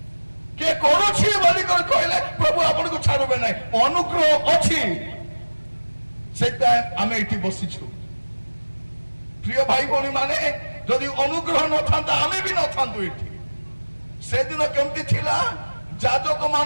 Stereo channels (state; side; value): inverted; both; correlation -1.00